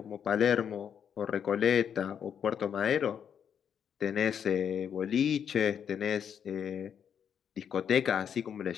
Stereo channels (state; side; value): quieter; right; 8.1 dB